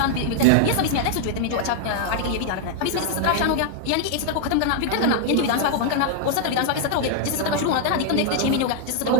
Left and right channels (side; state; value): both; different; correlation 0.00